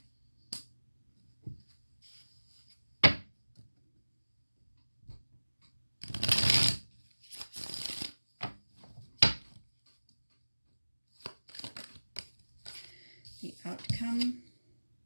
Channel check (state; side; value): inverted; both; correlation -1.00